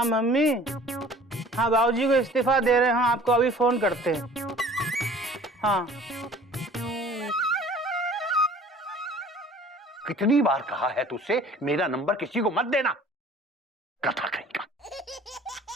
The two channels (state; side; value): normal; both; correlation 0.49